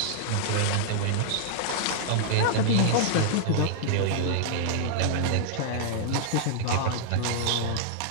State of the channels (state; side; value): different; both; correlation -0.01